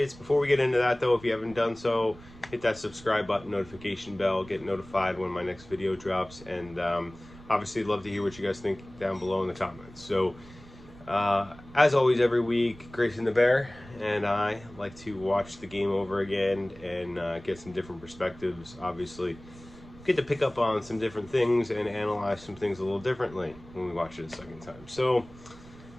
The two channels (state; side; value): noise; right; rumble, 20 dB below the sound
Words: Before we get into that, though, if you haven't done so, hit that subscribe button, notification bell, get notified when my next video drops, and obviously love to hear what you guys think down below in the comments. So, as always, every week, Grayson the Bear and I like to watch the game over again and get some different perspectives, obviously. Get to pick up on some different things and analyze some things a little differently when we watch it a second time. So